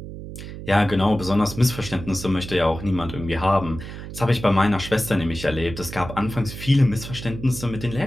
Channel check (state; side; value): noise; right; hum, 11 dB below the sound